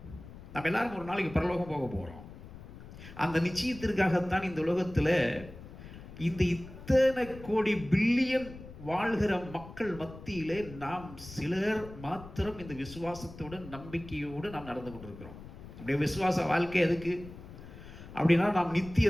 நம்ம எல்லாரும் ஒரு நாளைக்கு பரலோகம் போக போறோம். அந்த நிச்சயத்திற்காகத்தான் இந்த உலகத்தில் இந்த இத்தனை கோடி பில்லியன் வாழ்கிற மக்கள் மத்தியிலே நாம் சிலர் மாத்திரம் இந்த விசுவாசத்தோடு நம்பிக்கையோடு நாம் நடந்து கொண்டிருக்கிறோம். அப்படியே விசுவாச வாழ்க்கை எதுக்கு அப்படின்னா, நாம்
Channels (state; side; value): noise; left; rumble, 15 dB below the sound